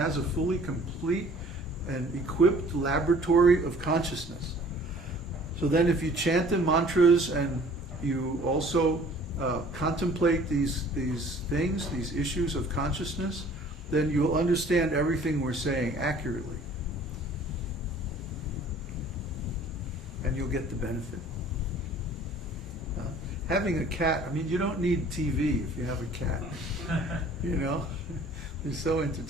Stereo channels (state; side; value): normal; both; correlation 0.52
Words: a fully complete and equipped laboratory of consciousness. So then if you chant the mantras and you also contemplate these things, these issues of consciousness, then you'll understand everything we're saying accurately. And you'll get the benefit. Having a cat, I mean, you don't need TV if you have a cat. You know? They're so